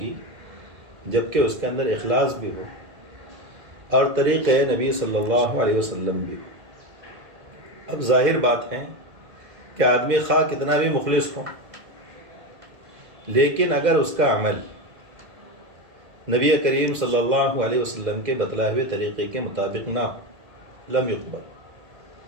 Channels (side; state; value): left; late; 2.1 ms